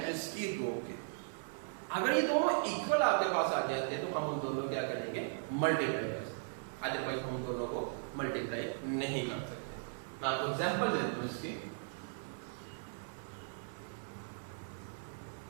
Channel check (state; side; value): silent; left; 53 dB below the other